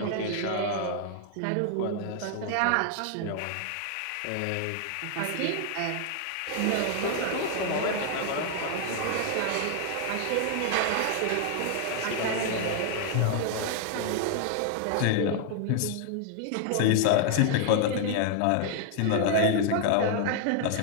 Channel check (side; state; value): both; different; correlation 0.00